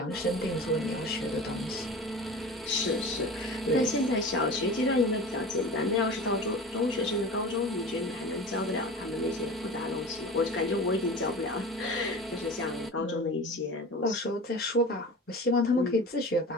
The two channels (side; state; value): both; normal; correlation 0.35